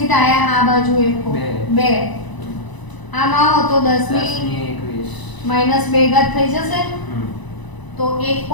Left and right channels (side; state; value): right; late; 1.0 ms